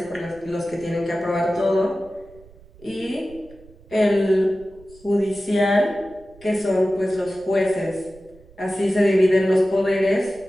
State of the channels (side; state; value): right; noise; rumble, 24 dB below the sound